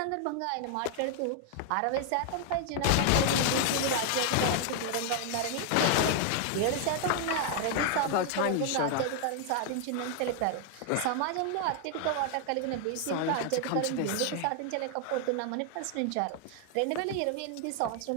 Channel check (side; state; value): both; different; correlation 0.00